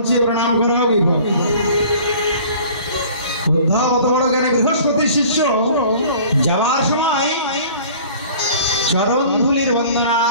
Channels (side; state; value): both; inverted; correlation -0.48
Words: চেয়ে প্রণাম করা হবে। উদ্ধব অত বড় জ্ঞানী বৃহস্পতির শিষ্য যাওয়ার সময় চরণ ধুলির বন্দনা